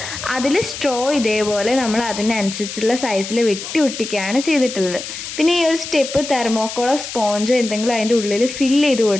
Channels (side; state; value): left; noise; hiss, 9 dB below the sound